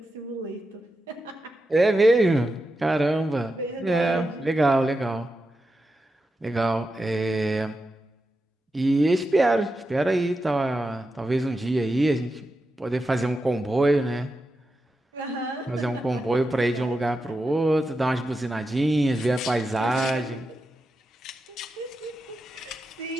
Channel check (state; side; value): normal; both; correlation 0.89